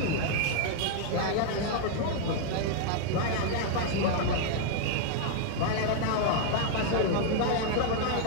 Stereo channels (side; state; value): both; different; correlation 0.00